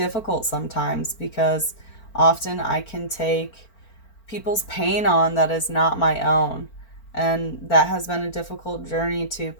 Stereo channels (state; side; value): late; right; 4.4 ms